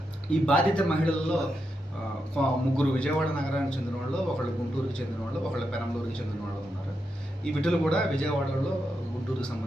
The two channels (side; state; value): both; normal; correlation 0.85